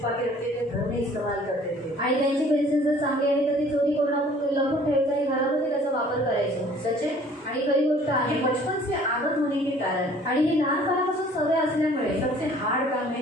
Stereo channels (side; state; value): both; normal; correlation 0.53